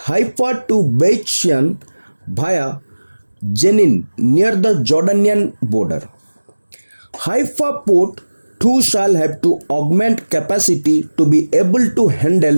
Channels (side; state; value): both; inverted; correlation -1.00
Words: to Beit Shean via Jenin near the Jordanian border. Haifa port too shall have to augment capacity to be able to